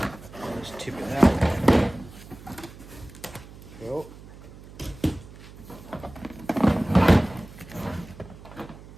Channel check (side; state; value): right; noise; hum, 18 dB below the sound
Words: Just tip it out. Cool.